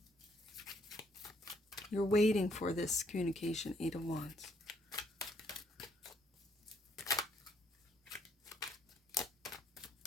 You're waiting for this communication, Eight of Wands.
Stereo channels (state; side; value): normal; both; correlation 0.69